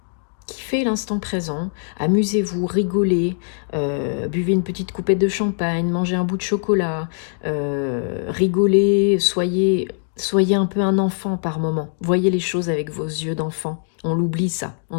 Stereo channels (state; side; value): silent; right; digital silence